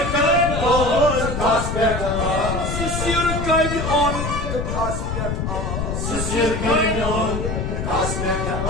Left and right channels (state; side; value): noise; left; rumble, 3 dB below the sound